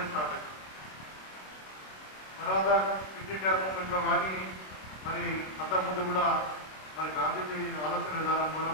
స్టార్ట్ అయింది. తర్వాత క్విట్ ఇండియా మూవ్మెంట్లో కానీ మరి అంతకుముందు కూడా మరి గాంధీజీ ఆలోచన విధానం కూడా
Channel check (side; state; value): right; late; 26 ms